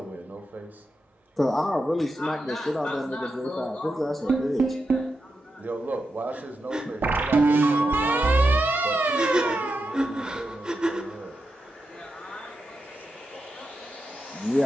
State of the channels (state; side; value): normal; both; correlation 0.88